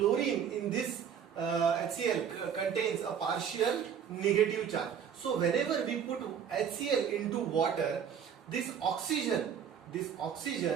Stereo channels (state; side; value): quieter; left; 7.9 dB